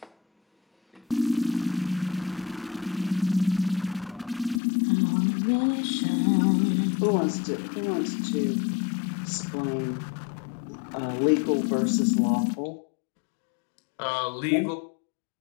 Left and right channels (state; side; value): drops out; right; at 4.6 s